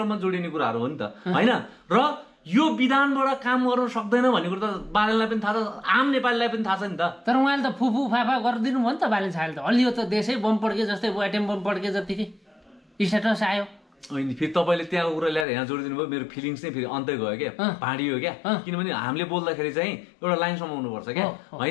जोडिने कुराहरू हो नि त होइन। र यो विधानबाट काम गर्न सक्दैन भन्ने कुरो त बालेनलाई पनि थाहा छ, आम नेपालीलाई पनि थाहा छ नि त। तर उहाँले त फुफु फाफा गरिदिनु भयो नि त बालेन साहबले त। हलियो त देशै बम पड्के जस्तै एटम बम पड्के जतिकै स्ट्याटस आयो। अनि फेरि तपाईँले त्यहाँको कुरा ल्याएर यहाँ जोडिदिनु भयो, मेरो फिलिङ्स नै फेरि अन्तै गयो क्या, भाँडियो क्या। किनभने हामीले बोल्दाखेरि चाहिँ एउटा लाइन समाउनुपर्छ क्या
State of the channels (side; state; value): right; drops out; at 15.5 s